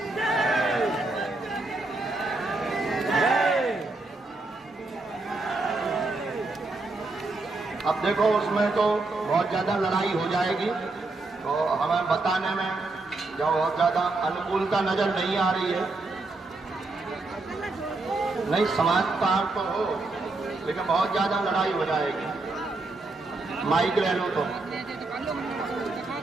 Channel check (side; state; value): left; quieter; 3.2 dB